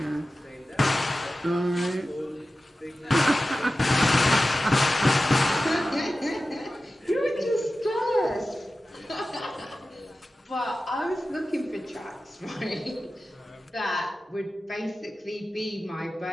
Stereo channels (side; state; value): both; normal; correlation 0.94